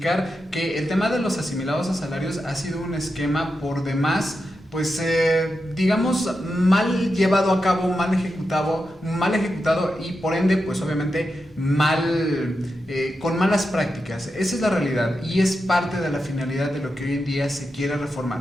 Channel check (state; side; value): normal; both; correlation 0.88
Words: que el tema de los asimilados a salarios ha sido un esquema por demás pues digamos mal llevado a cabo, mal ejecutado y por ende pues obviamente con malas prácticas. Esa es la realidad y es parte de la finalidad de lo que hoy en día se quiere